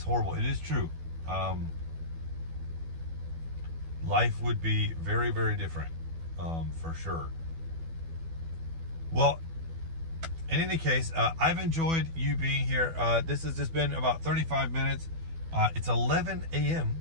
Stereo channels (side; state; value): left; late; 12 ms